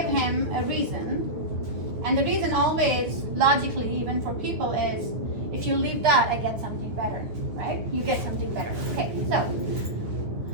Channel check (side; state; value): left; late; 9.4 ms